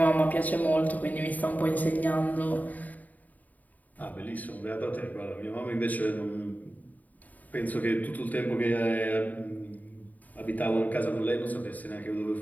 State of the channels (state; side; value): late; right; 0.077 ms